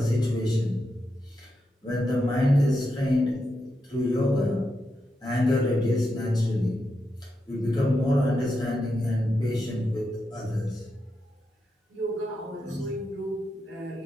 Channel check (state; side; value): normal; both; correlation 0.86